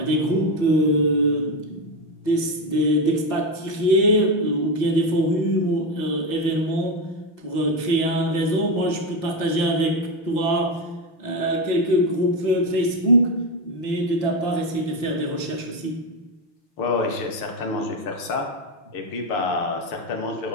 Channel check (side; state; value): right; late; 5.8 ms